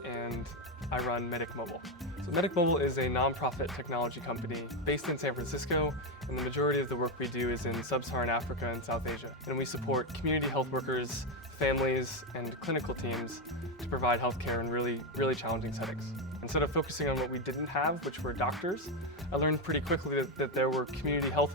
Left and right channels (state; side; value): normal; both; correlation 0.08